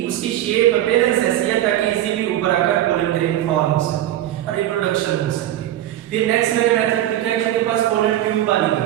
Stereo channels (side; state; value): left; quieter; 13.0 dB